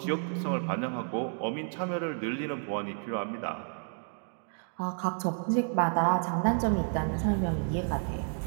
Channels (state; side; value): silent; left; 57 dB below the other